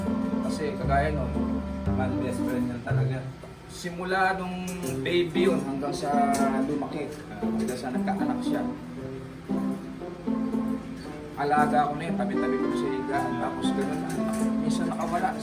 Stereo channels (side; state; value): both; identical; correlation 1.00